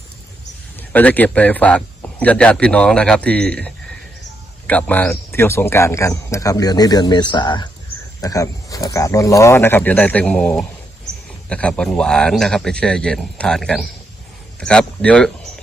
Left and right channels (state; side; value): normal; both; correlation 0.80